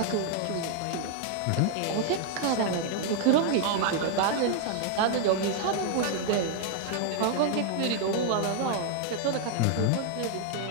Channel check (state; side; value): different; both; correlation 0.00